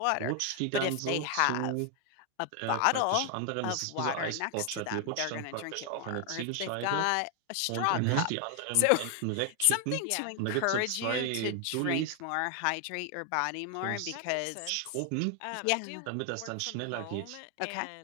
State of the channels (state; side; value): different; both; correlation 0.00